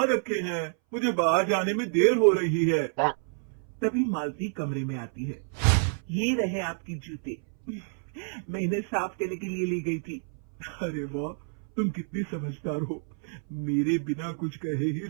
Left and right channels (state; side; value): silent; left; 59 dB below the other